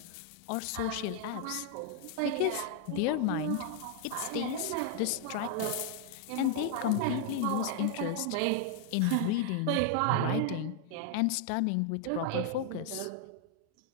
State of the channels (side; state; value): both; different; correlation 0.00